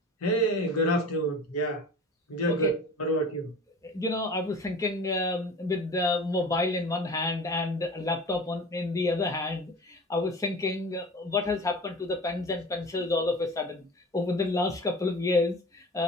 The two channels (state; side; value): normal; both; correlation 0.38